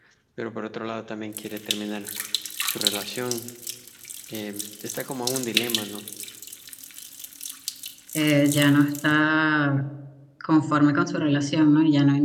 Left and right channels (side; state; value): both; identical; correlation 1.00